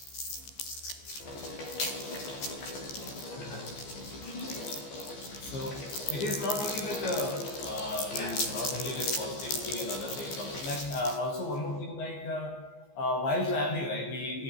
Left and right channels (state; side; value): late; right; 15 ms